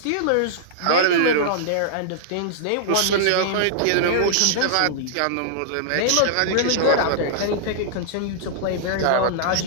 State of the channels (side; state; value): both; different; correlation -0.02